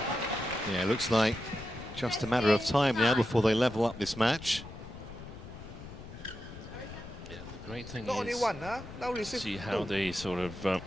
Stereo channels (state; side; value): noise; left; rumble, 13 dB below the sound